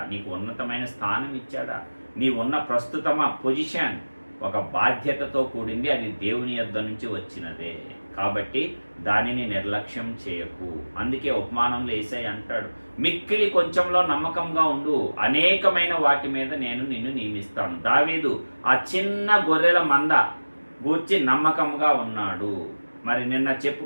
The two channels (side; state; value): both; inverted; correlation -1.00